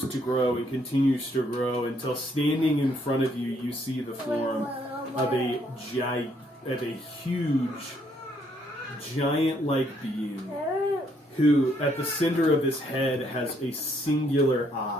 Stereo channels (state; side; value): normal; both; correlation 0.70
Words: to grow, and continues to grow, until standing in front of you, you see the form of a huge, giant-like being, who, at the center of his head, has a singular